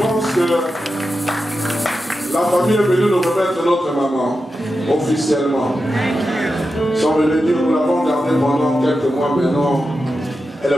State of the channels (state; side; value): normal; both; correlation 0.90